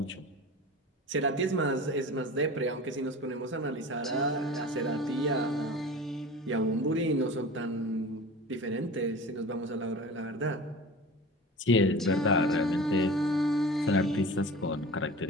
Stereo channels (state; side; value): normal; both; correlation 0.36